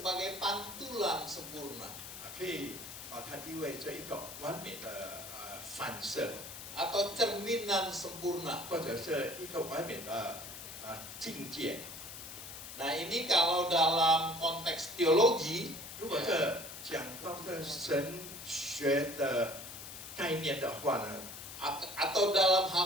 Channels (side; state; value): left; noise; hiss, 11 dB below the sound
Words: pantulan sempurna 可以把它意味着一个完美的反射， atau cerminan sempurna. 或者是一个完美的境界。 Nah, ini kalau dalam konteks teologi 如果这讲到这神学的概念的话呢， atau dalam